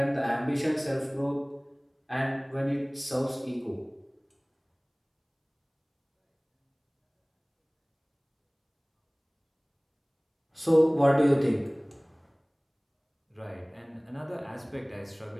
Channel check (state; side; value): identical; both; correlation 1.00